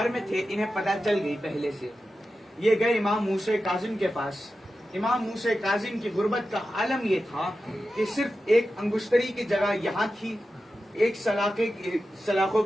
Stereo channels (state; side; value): normal; both; correlation 0.92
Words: میں تھے، انہیں پتہ چل گئی پہلے سے. یہ گئے امام موسیٰ کاظم کے پاس. امام موسیٰ کاظم کی غربت کا عالم یہ تھا کہ صرف ایک انگشتری کی جگہ یہاں تھی، ایک سلاخوں